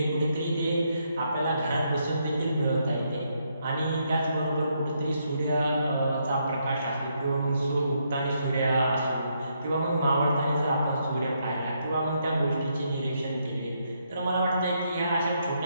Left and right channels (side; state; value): both; inverted; correlation -0.76